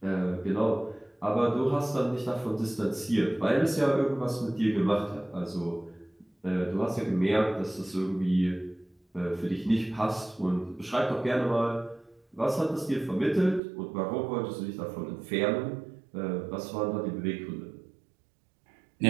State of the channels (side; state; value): left; drops out; at 13.6 s